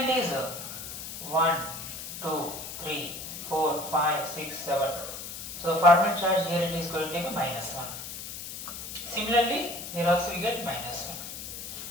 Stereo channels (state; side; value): noise; left; hiss, 9 dB below the sound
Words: is 1, 2, 3, 4, 5, 6, 7. So the formal charge here it is going to be minus 1. Similarly, here also we get minus 1.